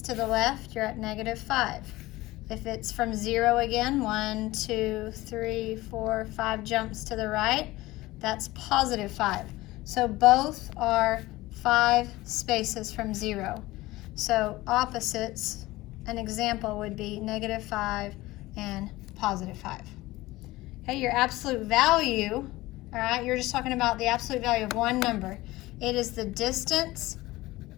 the left, you're at -5. If it's from 0 again, 1, 2, 3, 4, 5 jumps to the right, that's +5. So both are 5 spaces from 0. So opposites, an example would be -5 and +5. Okay, your absolute value, all right, you're just talking about the absolute value of one number. It is the distance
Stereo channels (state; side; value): quieter; right; 18.8 dB